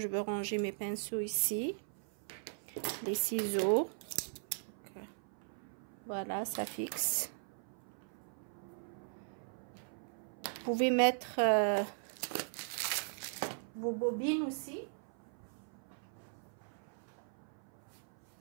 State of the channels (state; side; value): silent; left; 52 dB below the other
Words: veux ranger mes pinceaux ici. Les ciseaux. Voilà, ça fixe. Vous pouvez mettre vos bobines aussi.